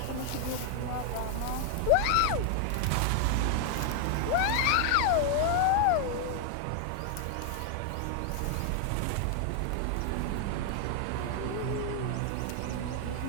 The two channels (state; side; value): different; both; correlation 0.00